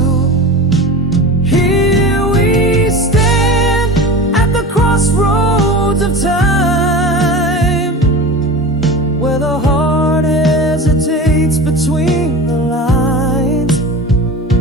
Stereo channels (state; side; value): normal; both; correlation 0.31